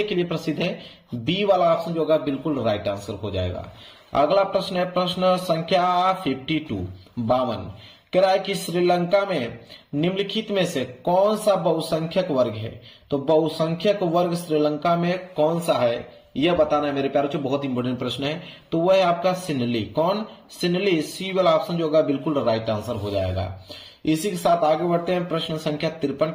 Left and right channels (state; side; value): identical; both; correlation 1.00